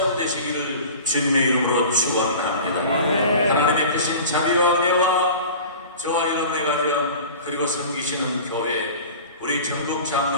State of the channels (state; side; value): inverted; both; correlation -0.38